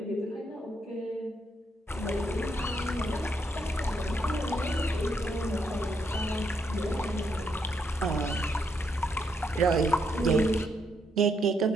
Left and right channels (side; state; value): both; normal; correlation 0.76